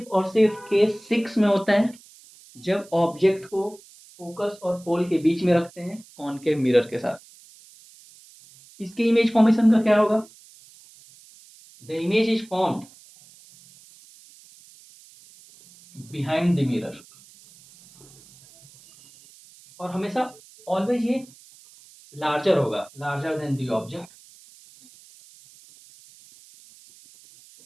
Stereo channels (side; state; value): right; noise; hiss, 24 dB below the sound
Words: और सिर्फ केस 6 में होता है, जब ऑब्जेक्ट को फोकस और पोल के बीच में रखते हैं कॉनकेव मिरर के साथ। इसके इमेज फॉर्मेशन का क्या होगा? The image is formed behind the mirror, और हमेशा ऑलवेज ये लार्जर होगा, लार्जर देन द ऑब्जेक्ट।